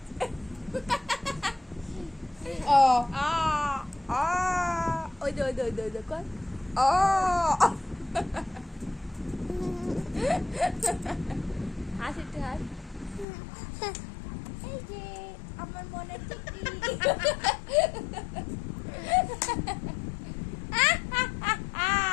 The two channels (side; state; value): right; drops out; at 13.2 s